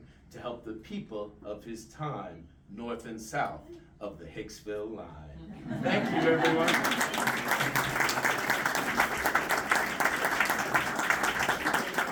to help the people of his time, north and south of the Hicksville line. Thank you, everyone.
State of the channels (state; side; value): identical; both; correlation 1.00